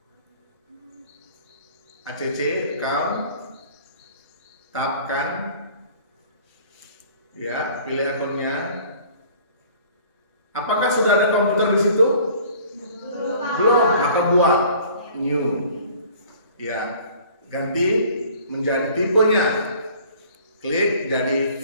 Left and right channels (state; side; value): inverted; both; correlation -0.50